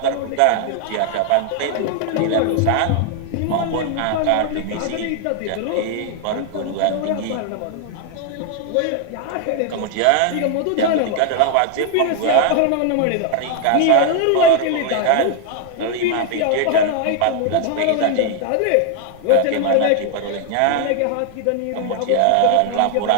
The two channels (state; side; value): different; both; correlation 0.00